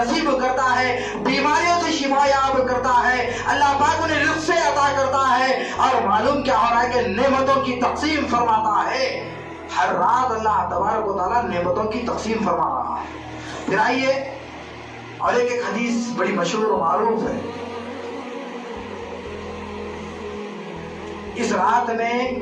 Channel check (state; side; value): identical; both; correlation 1.00